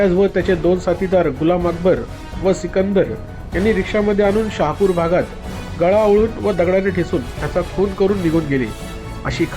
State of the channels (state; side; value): identical; both; correlation 1.00